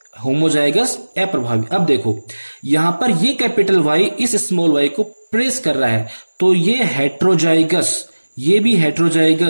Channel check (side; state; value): both; inverted; correlation -1.00